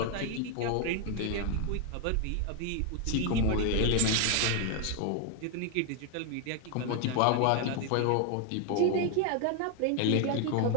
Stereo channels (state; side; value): different; both; correlation 0.01